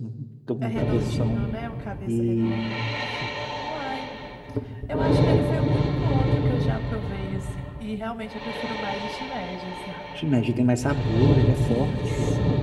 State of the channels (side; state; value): both; identical; correlation 1.00